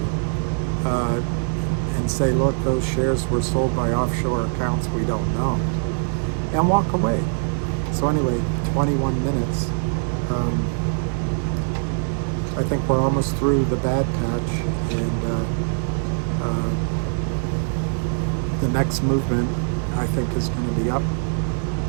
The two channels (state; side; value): silent; left; digital silence